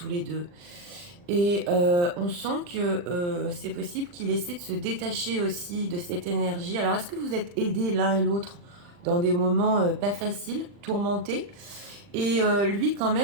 les deux. Et on sent que c'est possible qu'il essaie de se détacher aussi de cette énergie. Alors, est-ce que vous êtes aidés l'un et l'autre dans des moments pas faciles, tourmentés? Et lui, quand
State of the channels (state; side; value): late; left; 40 ms